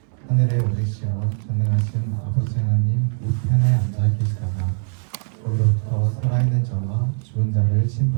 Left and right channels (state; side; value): silent; left; digital silence